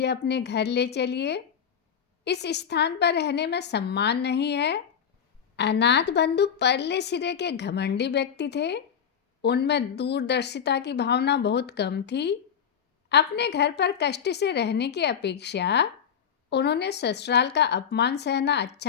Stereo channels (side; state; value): right; quieter; 7.9 dB